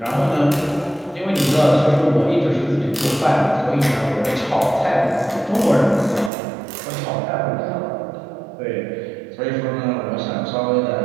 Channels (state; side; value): drops out; left; at 6.3 s